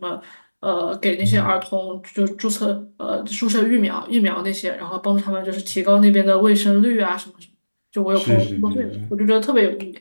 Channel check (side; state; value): both; inverted; correlation -1.00